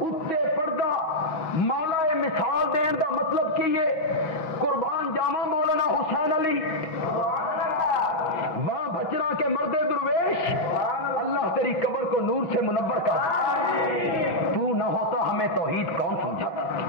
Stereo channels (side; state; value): right; late; 5.8 ms